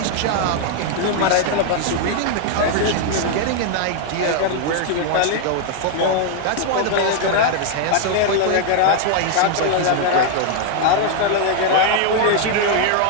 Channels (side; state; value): both; different; correlation 0.00